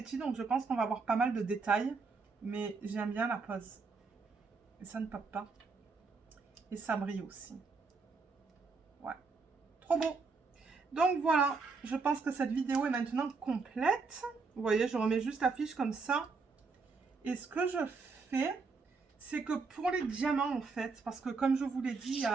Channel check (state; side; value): quieter; left; 4.5 dB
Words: donc je pense qu'on va avoir pas mal de détails. Mais j'aime bien la pose. Et ça ne pop pas. Et ça brille aussi. Ouais. Trop beau. Donc voilà, je pense que cette vidéo est maintenant complète. Vous voyez, je remets juste la fiche comme ça. Et ce que je fais, c'est que pour les diamants, en fait, parce que comme je vous l'ai dit,